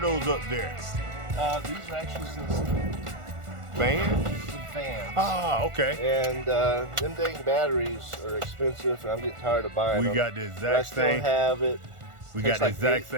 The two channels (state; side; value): late; left; 1.4 ms